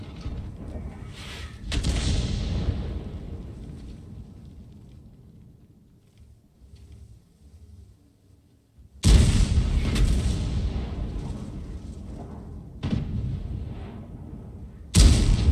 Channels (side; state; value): both; identical; correlation 1.00